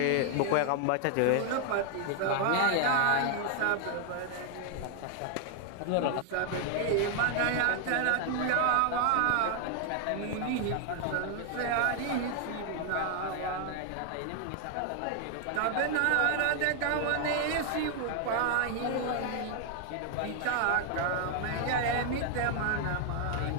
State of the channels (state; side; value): different; both; correlation 0.00